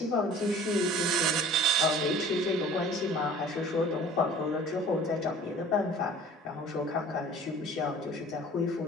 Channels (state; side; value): normal; both; correlation 0.46